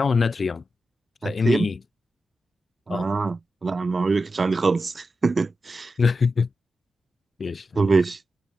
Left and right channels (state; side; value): normal; both; correlation 0.89